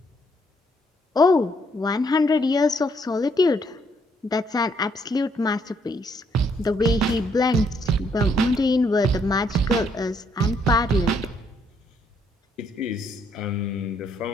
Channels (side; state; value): both; normal; correlation 0.71